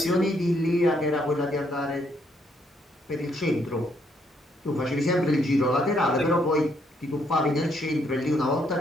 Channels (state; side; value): normal; both; correlation 0.72